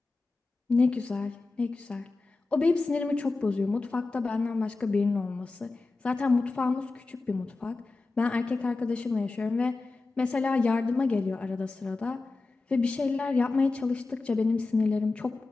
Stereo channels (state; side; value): quieter; right; 3.6 dB